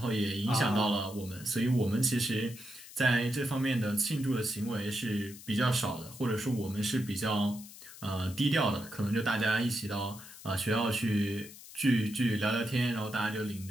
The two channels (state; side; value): noise; left; hiss, 17 dB below the sound